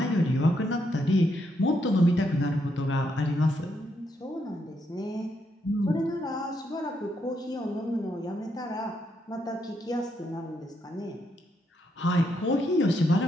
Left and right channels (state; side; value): normal; both; correlation 0.78